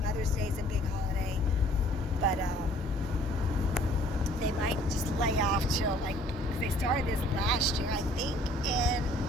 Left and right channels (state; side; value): normal; both; correlation 0.56